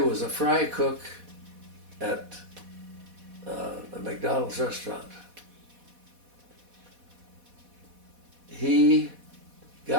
was a fry cook at a McDonald's restaurant. He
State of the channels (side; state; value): left; late; 4.1 ms